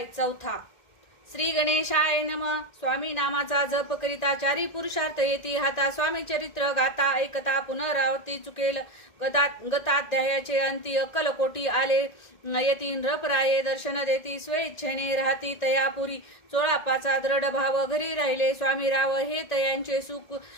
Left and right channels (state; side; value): late; right; 1.9 ms